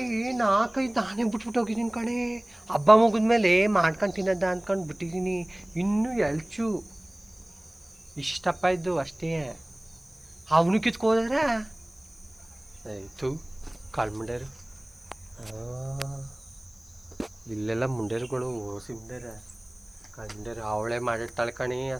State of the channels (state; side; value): noise; left; hiss, 28 dB below the sound